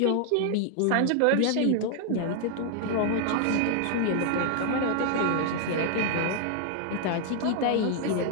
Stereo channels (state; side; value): different; both; correlation 0.00